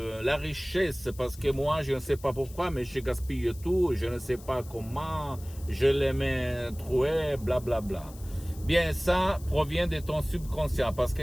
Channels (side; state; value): left; noise; hiss, 20 dB below the sound